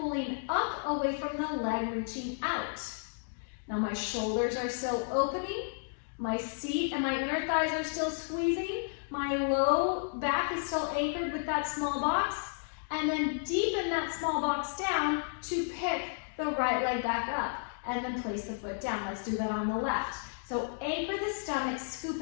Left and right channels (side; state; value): right; silent; digital silence